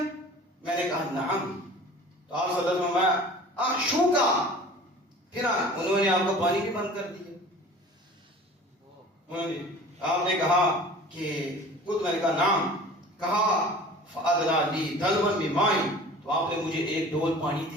میں نے کہا نعم. تو آپ صلی اللہ علیہ وسلم احشوکا، پھر انہوں نے آپ کو پانی بھی بند کر دیا. آپ نے کہا کہ خود، میں نے کہا نام. کہا فَأَدْنَا لِي دَلْوًا بِمَاءٍ، تو آپ نے مجھے ایک ڈول پانی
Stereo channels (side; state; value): both; normal; correlation 0.44